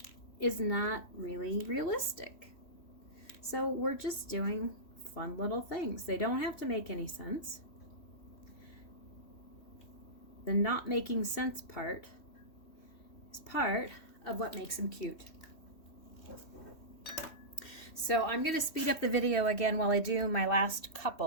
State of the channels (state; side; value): late; right; 3.1 ms